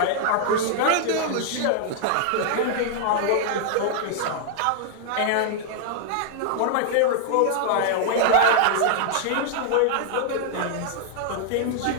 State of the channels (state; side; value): different; both; correlation -0.01